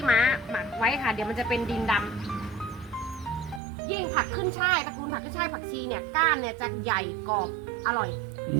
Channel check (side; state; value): left; drops out; at 3.6 s